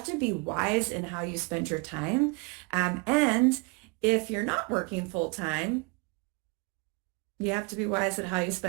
to be wise in how you spend your time. And if you're not working full time, you have to be wise at how you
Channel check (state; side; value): quieter; left; 30.0 dB